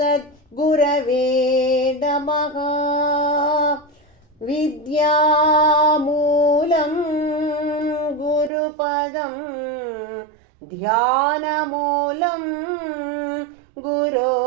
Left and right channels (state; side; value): drops out; left; at 8.5 s